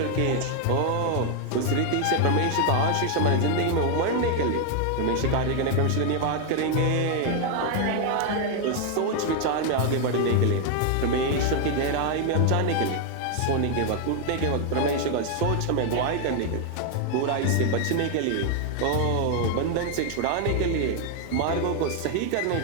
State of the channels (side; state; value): both; different; correlation 0.01